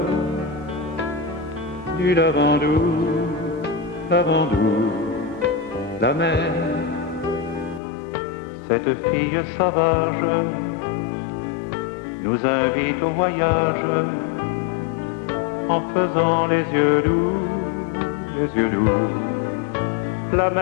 du Lavandou, Lavandou. La mer, cette fille sauvage, nous invite au voyage en faisant les yeux doux, les yeux doux. La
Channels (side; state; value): right; drops out; at 7.8 s